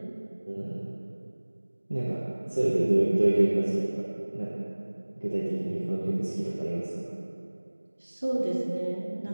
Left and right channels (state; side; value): inverted; both; correlation -1.00